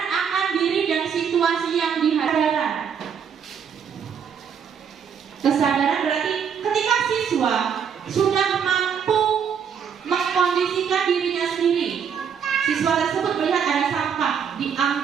akan diri dan situasi yang dihadapi. Kesadaran berarti ketika siswa sudah mampu mengkondisikan dirinya sendiri, siswa tersebut melihat ada sampah,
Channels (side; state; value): left; quieter; 7.4 dB